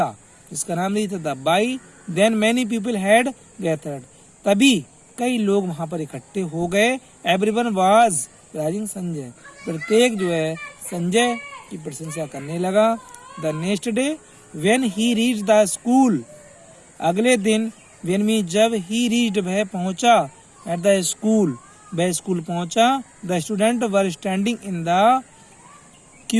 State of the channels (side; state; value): both; identical; correlation 1.00